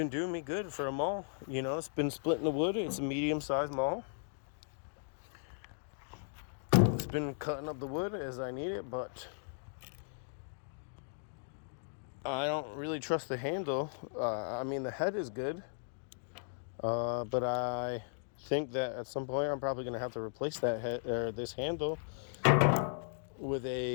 doing me good for a mall. It's been splitting the wood. It's a medium-sized mall. It's been cutting up the wood as I need it, but I don't really trust the handle. The head is good. But I think that at some point I'm probably going to have to replace that head or this handle with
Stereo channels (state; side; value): silent; right; digital silence